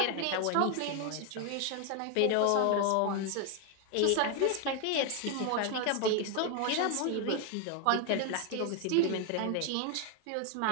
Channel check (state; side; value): different; both; correlation 0.01